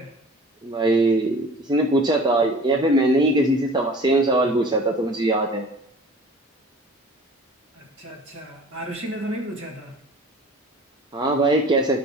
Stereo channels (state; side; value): normal; both; correlation 0.46